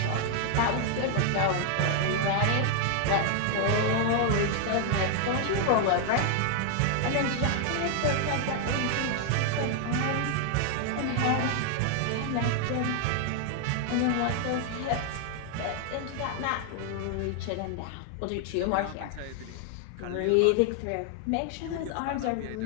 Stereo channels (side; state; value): both; different; correlation 0.00